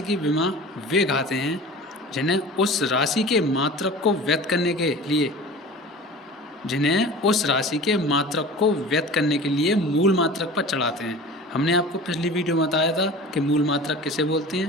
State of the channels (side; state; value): both; normal; correlation 0.38